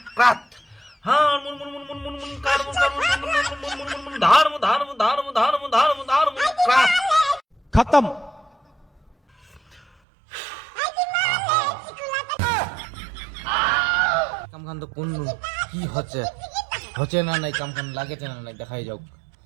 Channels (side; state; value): left; drops out; at 9.9 s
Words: खत्म। কামখান তো কোন কি হচ্ছে, হচ্ছে না নাই, কামখান লাগেছে না নাই, দেখাই যাও।